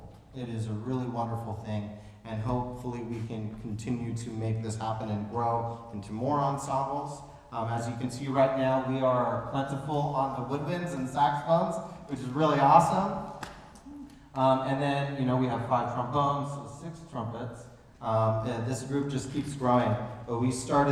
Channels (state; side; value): identical; both; correlation 1.00